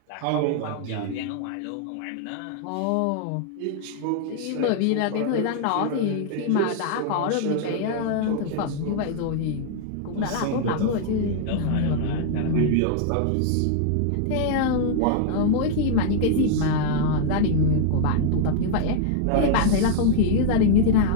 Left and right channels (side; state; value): both; different; correlation -0.01